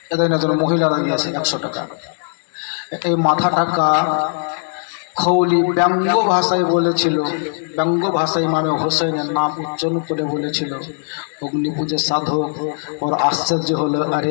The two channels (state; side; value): silent; right; digital silence